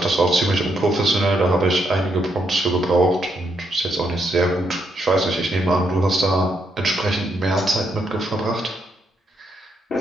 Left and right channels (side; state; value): both; normal; correlation 0.77